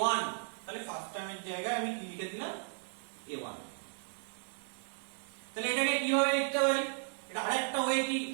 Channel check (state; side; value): silent; left; digital silence